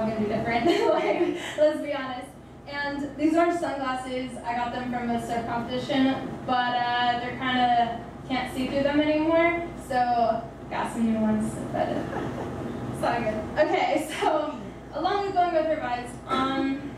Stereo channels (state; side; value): identical; both; correlation 1.00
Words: gonna be different. Like, let's be honest. And these orange sunglasses, I got them from a surf competition, but they're kind of, can't see through them anymore, so got some new ones, but it's all good. Okay, so along with going with revised,